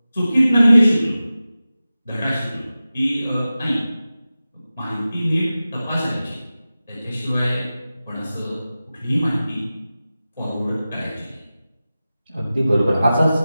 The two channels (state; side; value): inverted; both; correlation -0.95